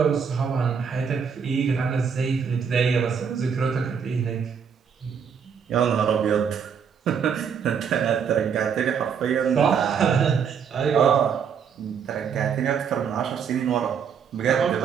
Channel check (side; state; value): left; quieter; 7.0 dB